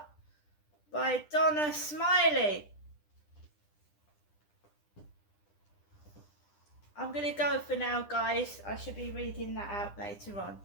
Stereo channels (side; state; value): right; late; 10 ms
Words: by Donna Smiley. I'm going to go for now, guys. I should be reading that out later on.